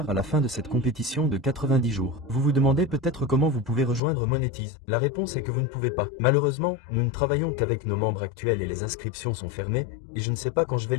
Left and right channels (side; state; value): right; drops out; at 4.0 s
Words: à la fin de cette compétition de 90 jours. Vous vous demandez peut-être comment vous pouvez rejoindre Monetize. La réponse est que vous ne pouvez pas. Malheureusement, nous ne travaillons qu'avec nos membres actuels et les inscriptions sont fermées, et je ne sais pas quand je vais